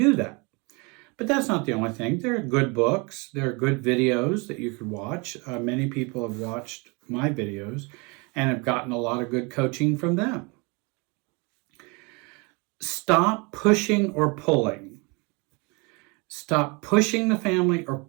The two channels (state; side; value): quieter; left; 29.7 dB